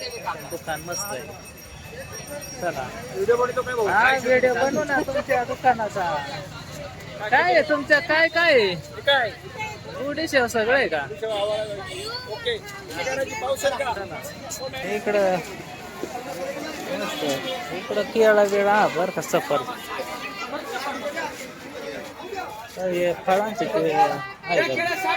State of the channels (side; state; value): both; identical; correlation 1.00